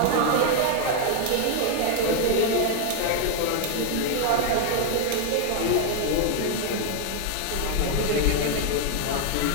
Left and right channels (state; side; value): different; both; correlation 0.00